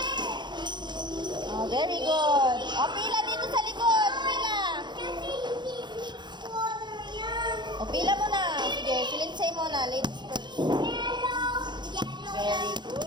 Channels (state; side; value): late; left; 0.21 ms